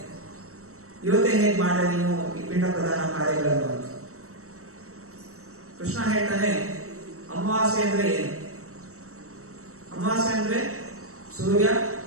ಇವತ್ತೇ ಹೇಗೆ ಮಾಡ ನೀನು ಈ ಪಿಂಡ ಪ್ರಧಾನ ಕಾರ್ಯಗಳನ್ನು ಅಂತ. ಕೃಷ್ಣ ಹೇಳ್ತಾನೆ, ಅಮಾವಾಸ್ಯೆ ಅಂದ್ರೆ ಏನು? ಅಮಾವಾಸ್ಯೆ ಅಂದ್ರೆ ಸೂರ್ಯ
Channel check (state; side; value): late; left; 0.64 ms